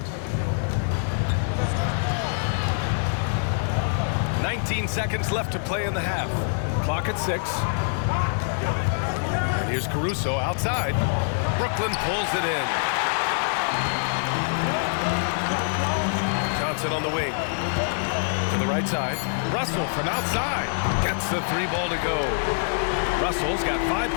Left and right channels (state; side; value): silent; right; digital silence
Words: 19 seconds left to play in the half. Clock at 6. And here's Caruso outside. Brooklyn pulls it in. Johnson on the wing. To the right side. Russell from outside. Gets the 3 ball to go. Russell's got 5